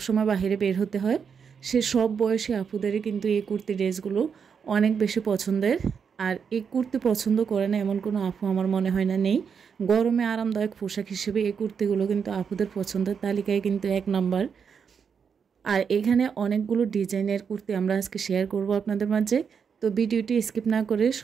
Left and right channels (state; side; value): quieter; left; 6.6 dB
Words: বাইরে বের হতে হয়, সে সব বয়সী আপুদেরই কিন্তু এই কুর্তি ড্রেসগুলো অনেক বেশি পছন্দের। আর এই কুর্তি পছন্দ করে না এমন কোনো আপু আমার মনে হয় না নেই। গরমে আরামদায়ক পোশাক হিসেবে এই কুর্তিগুলো কিন্তু আপুদের পছন্দের তালিকায় কিন্তু 1 নাম্বার। আর এখানে অনেকগুলো ডিজাইনের কুর্তি আমরা আজকে শেয়ার করব আপনাদের মাঝে। তো ভিডিওটি স্কিপ না করে